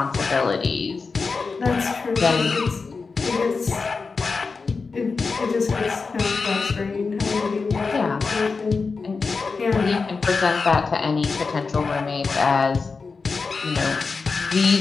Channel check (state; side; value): quieter; right; 4.5 dB